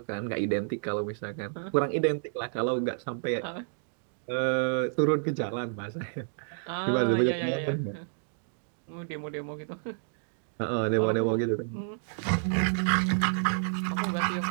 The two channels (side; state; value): left; silent; digital silence